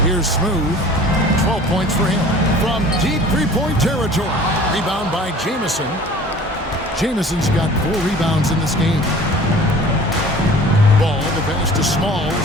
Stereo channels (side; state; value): both; normal; correlation 0.46